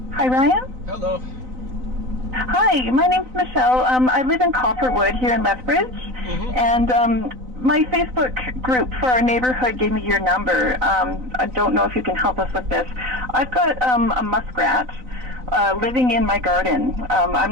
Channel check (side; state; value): left; late; 3.9 ms